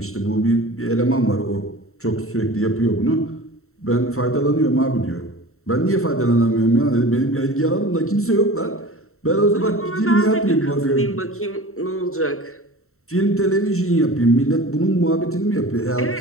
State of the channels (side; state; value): right; late; 0.63 ms